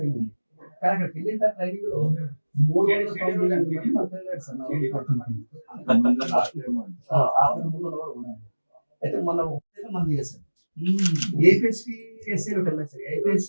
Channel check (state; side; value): inverted; both; correlation -1.00